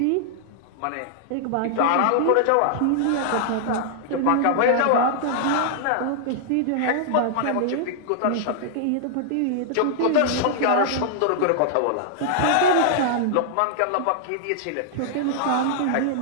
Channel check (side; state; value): both; different; correlation -0.01